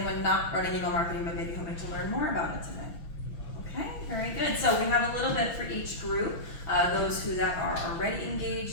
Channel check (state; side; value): late; right; 6.1 ms